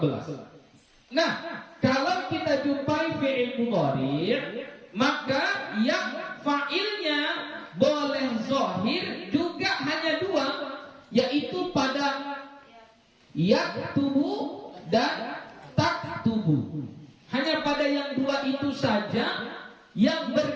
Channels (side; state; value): both; identical; correlation 1.00